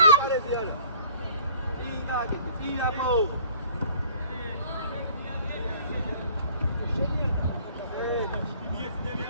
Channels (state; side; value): inverted; both; correlation -0.52